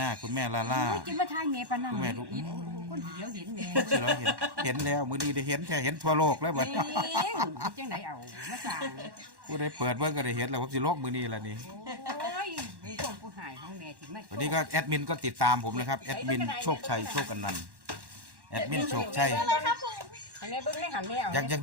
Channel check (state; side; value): late; left; 1.1 ms